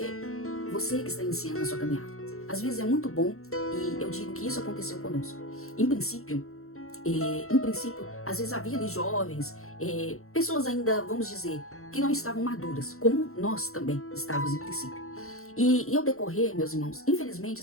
que está iniciando a sua caminhada, às vezes é muito bom, e eu digo que isso aconteceu conosco. Em princípio, às vezes havia ali jovens, pessoas ainda, vamos dizer, que não estavam maduras, como nós também estávamos em princípio. E ao decorrer, meus irmãos, infelizmente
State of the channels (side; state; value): right; late; 0.63 ms